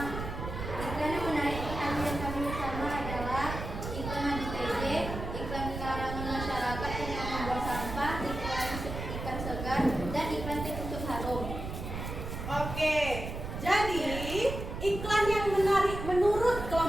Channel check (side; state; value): right; noise; rumble, 7 dB below the sound